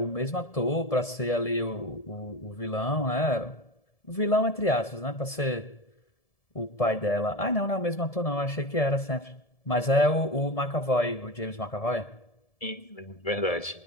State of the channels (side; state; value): right; late; 1.7 ms